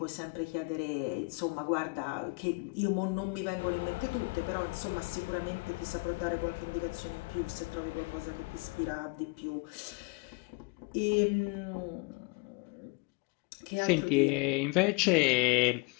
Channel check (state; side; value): quieter; right; 29.1 dB